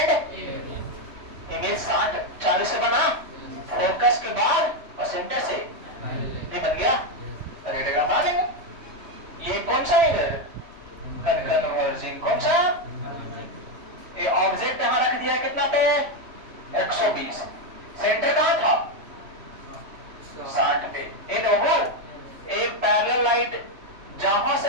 इमेज 40 से बना, फोकस के बाद और सेंटर से ये बन गया, रेडियोग्राम आ गया। ये कौन सा है? कन्वर्जिंग कौन सा? ये ऑब्जेक्ट यहां रख दिया कितना पे? 120। सेंटर कहां था? 60 पे। इन वो एक पैरेलल लाइट जहां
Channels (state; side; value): late; left; 3.1 ms